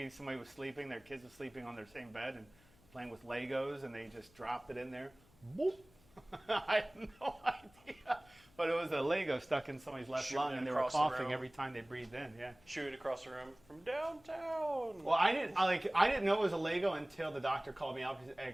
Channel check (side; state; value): left; noise; hum, 28 dB below the sound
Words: somebody was sleeping. Their kids were sleeping on their same bed and playing with Legos, and they just dropped it in there. Boop. I have no idea. But it was a Lego stuck in somebody's left lung, and they were coughing every time they breathed in. Yeah. Shoot across the room from downtown. Well, I didn't know it was a Lego until the doctor called me up